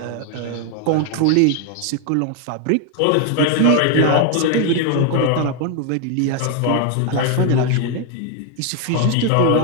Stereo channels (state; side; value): different; both; correlation 0.00